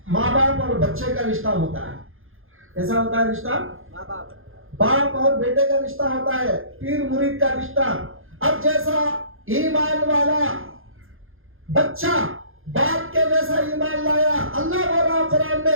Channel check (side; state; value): left; late; 0.60 ms